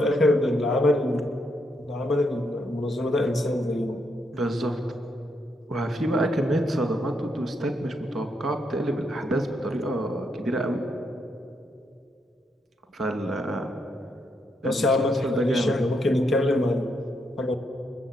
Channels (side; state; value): both; normal; correlation 0.78